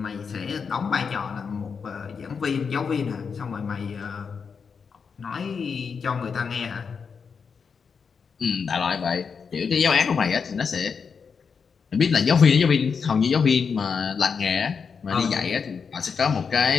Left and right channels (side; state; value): right; quieter; 5.9 dB